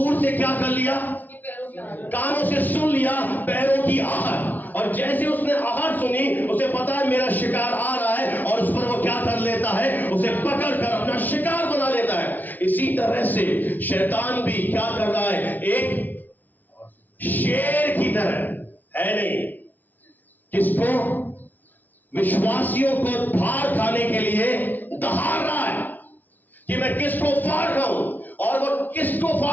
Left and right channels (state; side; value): late; right; 0.082 ms